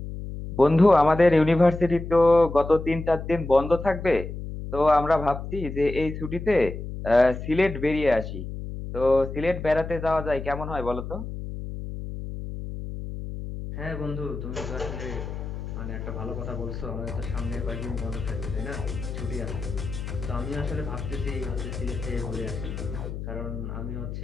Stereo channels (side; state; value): left; noise; hum, 8 dB below the sound